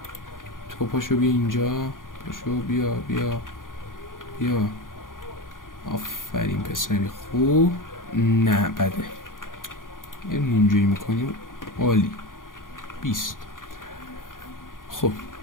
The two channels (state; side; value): late; right; 0.90 ms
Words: تو پاشو بیا اینجا، پاشو بیا آفرین پسری خوب. نه بده. یه اینجوری میکنیم. عالی. 20. خب